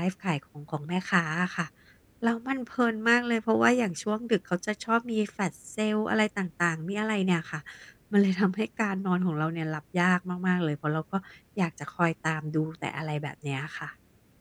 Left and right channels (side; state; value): both; identical; correlation 1.00